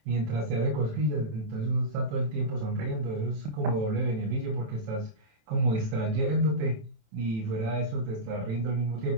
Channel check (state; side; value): late; left; 27 ms